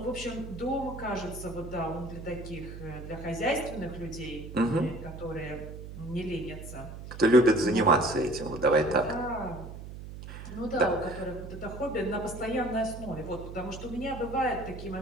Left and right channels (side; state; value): right; noise; hum, 11 dB below the sound